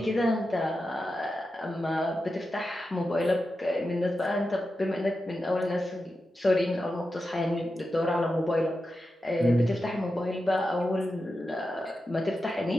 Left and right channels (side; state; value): both; normal; correlation 0.90